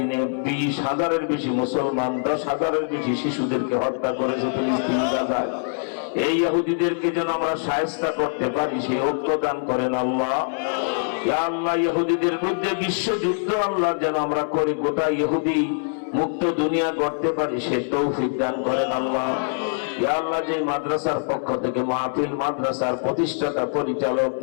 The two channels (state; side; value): silent; right; 63 dB below the other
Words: 20,000-এর বেশি মুসলমান, 10,000-এর বেশি শিশুদেরকে হত্যা করেছে ফিলিস্তিন গাজায়। এই ইহুদিদেরকে যেন আমরা শায়েস্তা করতে পারি, সেই ঐক্য দান করেন আল্লাহ। ইয়া আল্লাহ, ইহুদিদের বিরুদ্ধে বিশ্বযুদ্ধ আল্লাহ যেন আমরা করি, গোটা ইহুদি মুক্ত দুনিয়া করতে পারি, সে তৌফিক দান করেন আল্লাহ। ইয়া আল্লাহ, যে মাদ্রাসার পক্ষ থেকে মাহফিল মাদ্রাসার প্রতিষ্ঠাতা পরিচালক